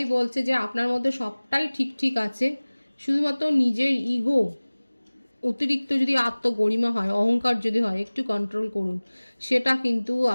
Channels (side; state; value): both; inverted; correlation -1.00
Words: বলছে যে আপনার মধ্যে সবটাই ঠিক আছে, শুধুমাত্র নিজের ইগো, অতিরিক্ত যদি আত্মগরিমা হয়, অহংকার যদি হয়, একটু কন্ট্রোল করুন। সেটা কিন্তু